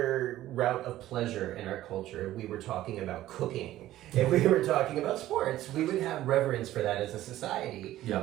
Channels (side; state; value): left; quieter; 14.4 dB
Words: route of pleasure in our culture, if we were talking about cooking, if we were talking about sports, we would have reverence for that as a society.